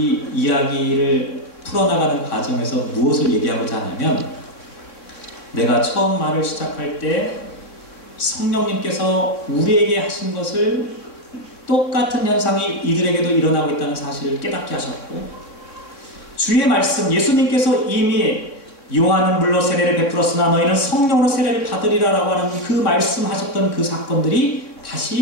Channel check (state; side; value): late; right; 3.6 ms